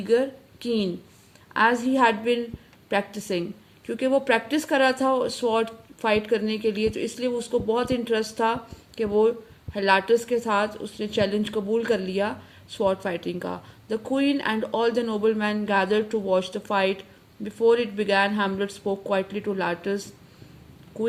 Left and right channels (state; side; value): identical; both; correlation 1.00